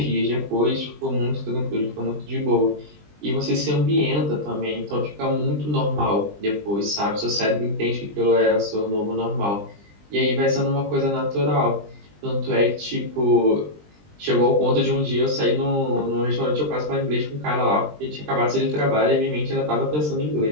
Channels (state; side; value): late; left; 20 ms